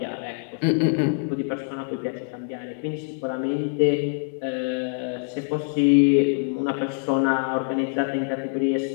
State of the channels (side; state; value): right; silent; digital silence